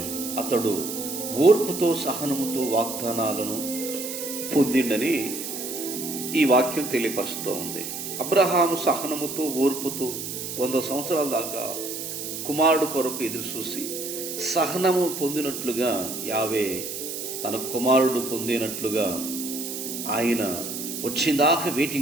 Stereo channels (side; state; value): right; noise; hiss, 6 dB below the sound